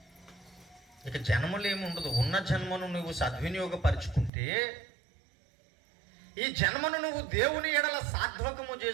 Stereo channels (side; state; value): left; drops out; at 4.3 s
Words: ఇక జన్మలు ఏమి ఉండదు. ఉన్న జన్మను నువ్వు సద్వినియోగపరుచుకుంటే, ఈ జన్మను నువ్వు దేవుని ఎడల సాత్వకము